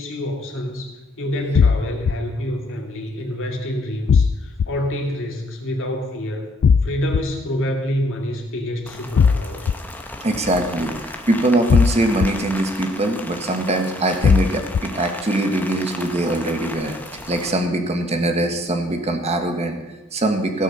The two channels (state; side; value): normal; both; correlation 0.66